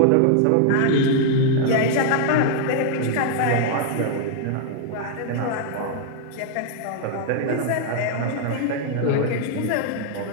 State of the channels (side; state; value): both; different; correlation 0.00